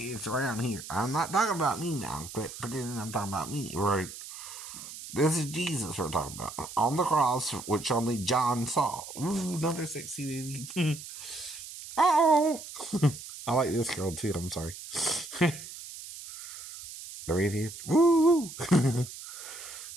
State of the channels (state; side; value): noise; right; hiss, 12 dB below the sound